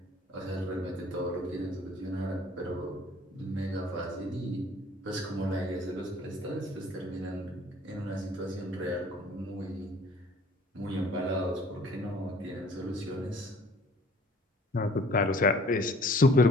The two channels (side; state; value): both; normal; correlation 0.53